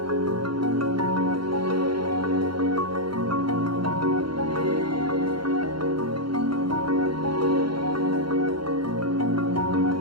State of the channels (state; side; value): late; left; 0.73 ms